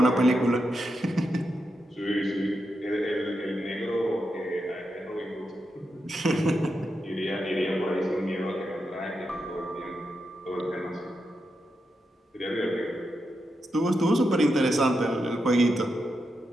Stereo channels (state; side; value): normal; both; correlation 0.86